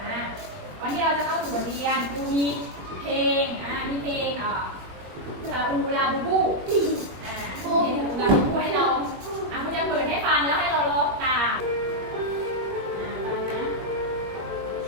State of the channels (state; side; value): late; left; 21 ms